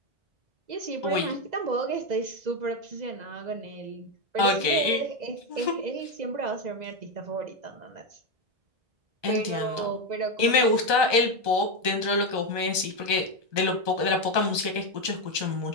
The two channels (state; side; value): late; left; 1.2 ms